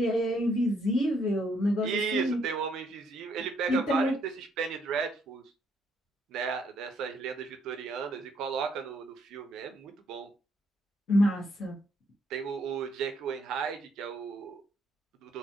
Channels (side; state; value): both; normal; correlation 0.70